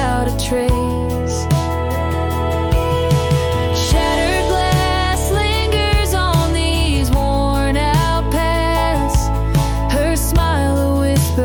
a trace. Shattered glass lingers on these worn out paths, her smile a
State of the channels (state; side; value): identical; both; correlation 1.00